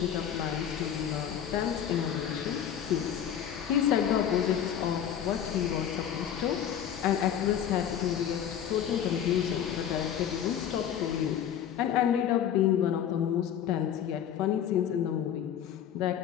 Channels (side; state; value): right; quieter; 9.4 dB